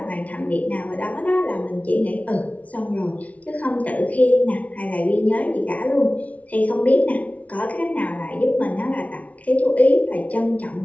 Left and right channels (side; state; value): right; late; 0.068 ms